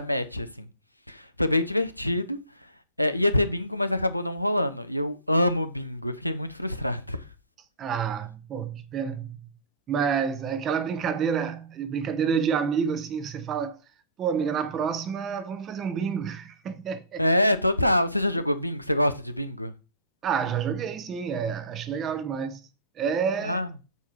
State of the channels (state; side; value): inverted; both; correlation -0.36